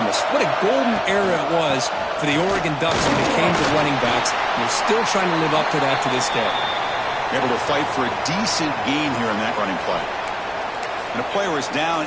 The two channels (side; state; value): both; identical; correlation 1.00